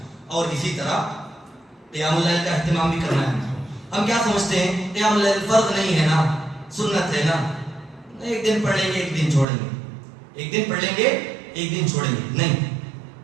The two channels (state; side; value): drops out; left; at 9.5 s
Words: اور اسی طرح قیام اللیل کا اہتمام بھی کرنا ہے. ہم کیا سمجھتے ہیں قیام اللیل فرض نہیں ہے نا، سنت ہے نا، ایک دن پڑھ لیں گے ایک دن چھوڑیں گے، ایک دن پڑھ لیں گے ایک دن چھوڑیں گے. نہیں،